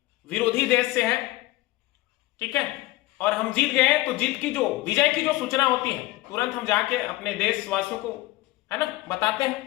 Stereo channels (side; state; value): right; quieter; 18.4 dB